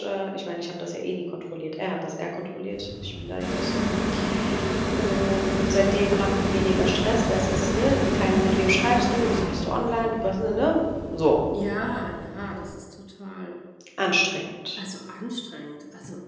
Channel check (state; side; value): identical; both; correlation 1.00